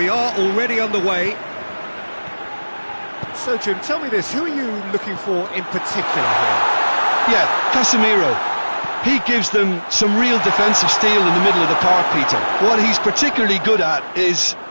are already underway. So, Jim, tell me this, who are you looking for in particular here? Yeah, Casemiro. He gives them some real defensive steel in the middle of the park, Peter. What he's particularly good at is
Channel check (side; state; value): both; inverted; correlation -1.00